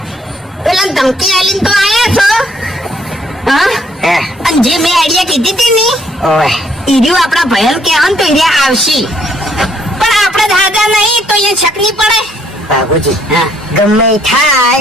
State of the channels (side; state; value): both; normal; correlation 0.66